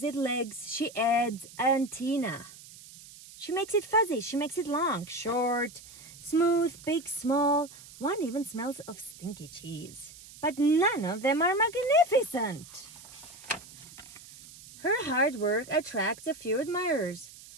it legs. She adds antenna. She makes it fuzzy. She makes it long, short, smooth, big, small. One even smells of stinky cheese. But none of them are magnificent. Her hard work attracts a few admirers,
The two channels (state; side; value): noise; right; hiss, 19 dB below the sound